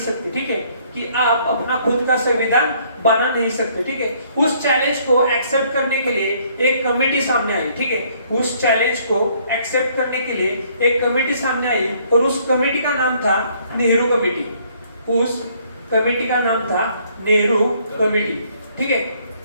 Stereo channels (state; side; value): inverted; both; correlation -0.64